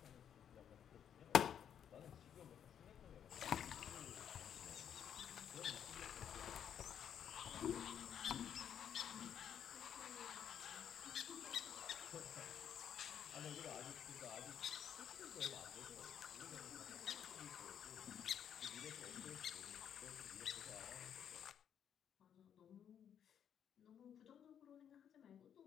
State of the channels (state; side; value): quieter; right; 8.9 dB